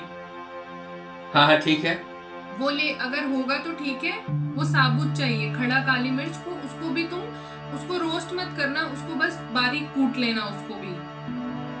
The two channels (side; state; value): both; identical; correlation 1.00